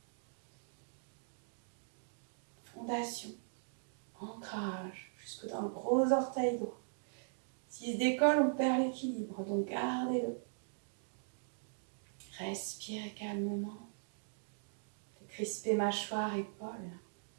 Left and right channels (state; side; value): silent; left; digital silence